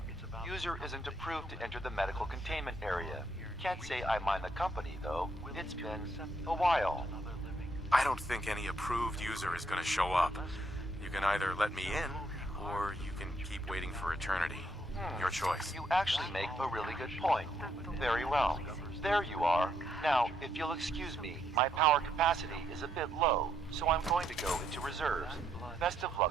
User isn't approved to enter the medical containment area. Can't say I mind the company, though. It's been a while. I don't think any approved user is going to show up. You can either let me in, or you can keep waiting for eternity. Your choice. You actually make a really good point. Very well. There you are. Now, if you'll excuse me, my power capacity is a bit low, so I'm going to go into reserves. Best of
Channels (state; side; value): normal; both; correlation 0.74